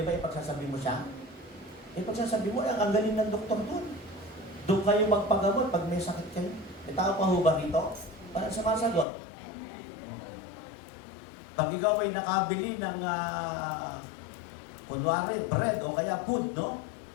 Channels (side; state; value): right; drops out; at 9.1 s